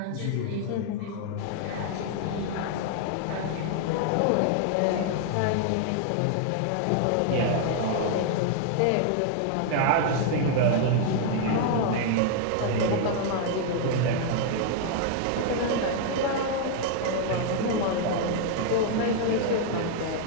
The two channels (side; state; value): both; different; correlation 0.00